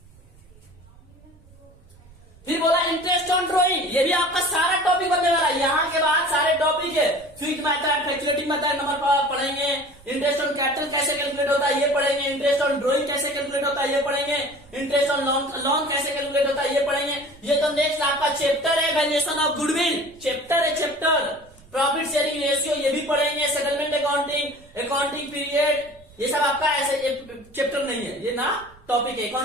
फिर बोला इंटरेस्ट ऑन ड्रॉइंग, ये भी आपका सारा टॉपिक बनने वाला है। यहां के बाद सारे टॉपिक है, fixed method, calculating method number पढ़ेंगे, इंटरेस्ट ऑन कैपिटल कैसे कैलकुलेट होता है ये पढ़ेंगे, इंटरेस्ट ऑन ड्रॉइंग कैसे कैलकुलेट होता है ये पढ़ेंगे, इंटरेस्ट ऑन लोन कैसे कैलकुलेट होता है ये पढ़ेंगे। ये तो नेक्स्ट आपका चैप्टर है, वैल्यूएशन ऑफ गुडविल चैप्टर है, चैप्टर प्रॉफिट शेयरिंग रेशियो ये भी पढ़ेंगे, सेटलमेंट अकाउंटिंग, अकाउंटिंग पीरियड, ये सब आपका ऐसे चैप्टर नहीं है, ये ना टॉपिक है।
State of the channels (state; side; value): noise; right; rumble, 25 dB below the sound